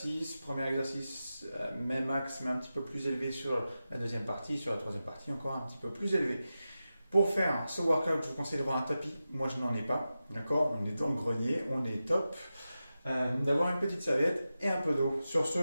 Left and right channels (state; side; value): inverted; both; correlation -0.92